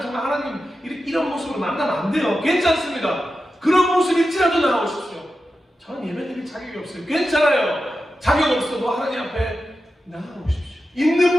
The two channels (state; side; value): normal; both; correlation 0.91